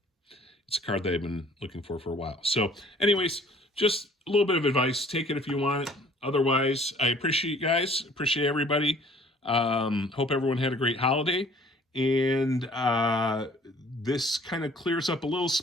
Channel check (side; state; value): both; normal; correlation 0.54